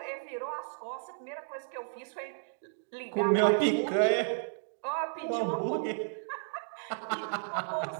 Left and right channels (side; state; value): left; silent; digital silence